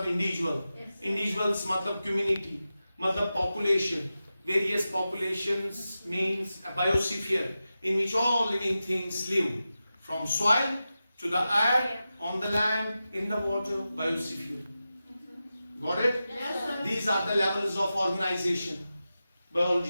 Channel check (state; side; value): inverted; both; correlation -0.93